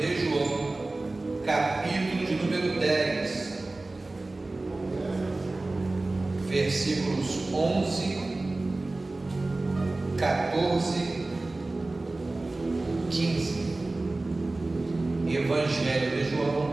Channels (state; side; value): quieter; left; 3.1 dB